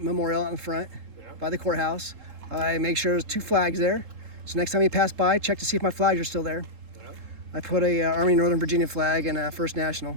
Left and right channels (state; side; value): late; left; 3.7 ms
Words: out in front, by the courthouse. I make sure there's 2 flags there. So next time you pass by, check to see if my flags are still there. Yeah. I put a Army Northern Virginia flag and a First National.